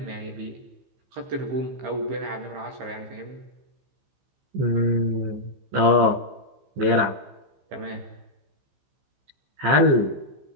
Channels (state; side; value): late; left; 15 ms